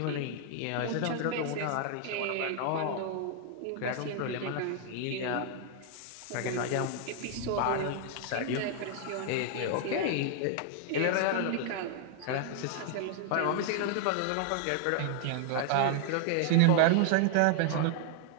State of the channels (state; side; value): different; both; correlation 0.00